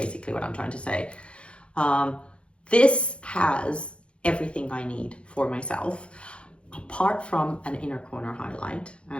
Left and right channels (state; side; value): late; right; 0.059 ms